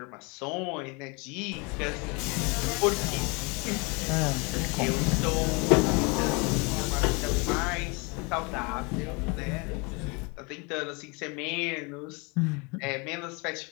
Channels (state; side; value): quieter; right; 29.8 dB